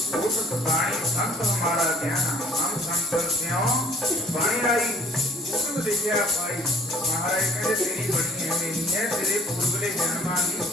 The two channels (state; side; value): normal; both; correlation 0.54